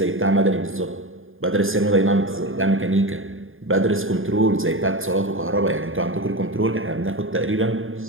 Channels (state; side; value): late; left; 0.59 ms